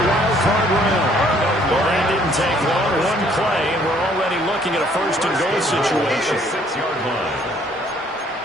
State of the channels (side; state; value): both; normal; correlation 0.62